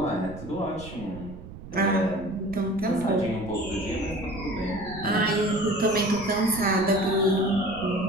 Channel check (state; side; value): noise; right; rumble, 14 dB below the sound